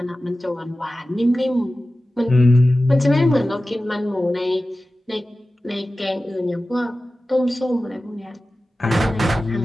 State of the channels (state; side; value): normal; both; correlation 0.95